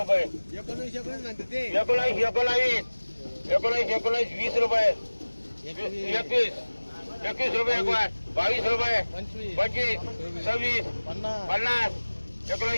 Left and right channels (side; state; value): both; inverted; correlation -1.00